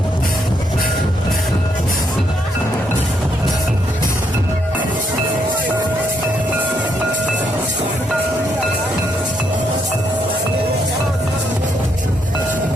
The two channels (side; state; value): both; normal; correlation 0.75